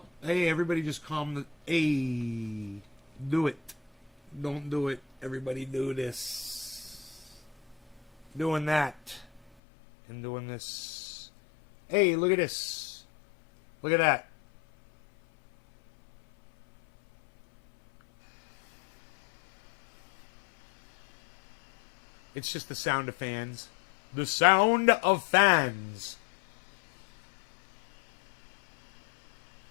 hey, everybody just calm the... Hey, do it. Don't do it. Everybody do this. Doing that. And doing this. Hey, look at this. Look at that. It's just the sound of fans. The sound of fans.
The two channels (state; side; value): drops out; right; at 9.4 s